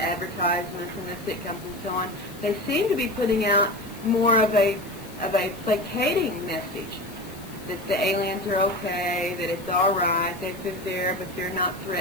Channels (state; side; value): noise; left; hiss, 20 dB below the sound